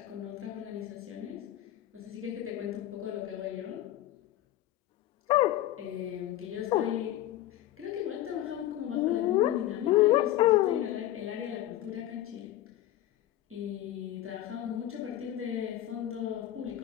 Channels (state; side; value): quieter; right; 13.4 dB